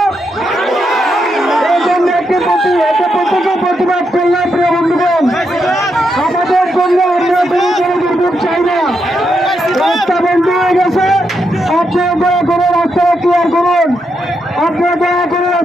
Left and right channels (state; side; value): normal; both; correlation 0.82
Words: এই জন্য প্রত্যেকে প্রতিবাদ করলাম। প্রিয় বন্ধুগণ, আমাদের জন্য আমরা কোনো দুর্ভোগ চাই না। রাস্তা বন্ধ হয়ে গেছে, আপনারা দয়া করে রাস্তাটা ক্লিয়ার করুন। আপনারা দয়া করে